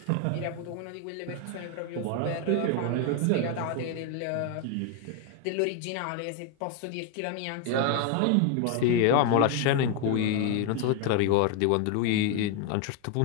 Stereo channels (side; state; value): both; different; correlation 0.01